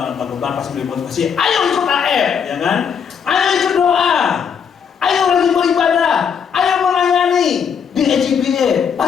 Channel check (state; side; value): quieter; right; 7.1 dB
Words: pak gembala pasti beri motivasi, ayo ikut AF, ya kan? Ayo ikut doa, ayo rajin beribadah, ayo melayani di EJBA,